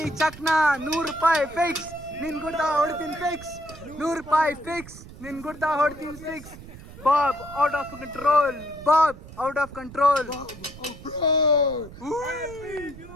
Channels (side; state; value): right; noise; rumble, 16 dB below the sound